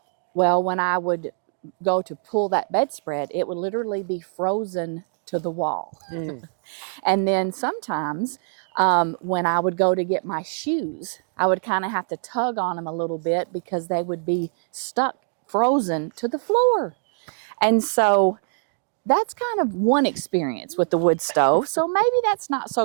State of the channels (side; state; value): left; silent; digital silence